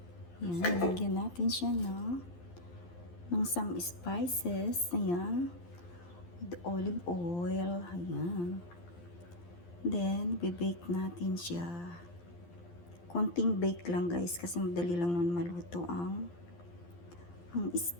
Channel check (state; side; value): late; right; 12 ms